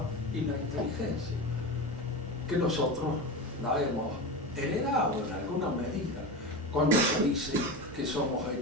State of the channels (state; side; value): normal; both; correlation 0.23